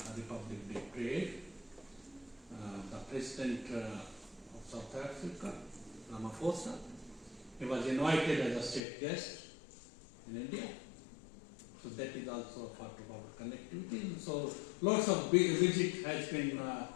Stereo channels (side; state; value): right; drops out; at 8.8 s